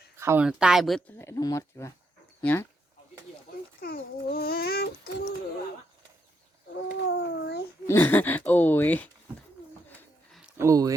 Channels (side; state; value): both; normal; correlation 0.78